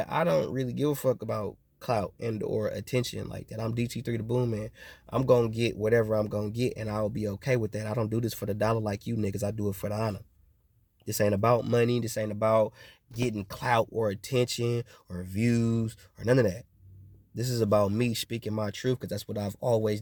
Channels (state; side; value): identical; both; correlation 1.00